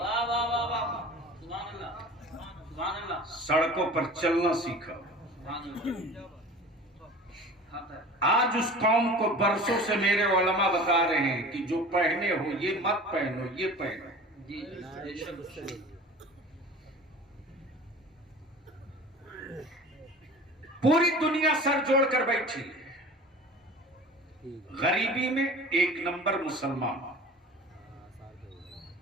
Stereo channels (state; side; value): normal; both; correlation 0.40